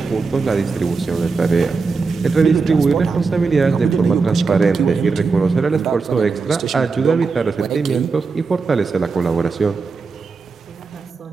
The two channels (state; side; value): quieter; left; 4.5 dB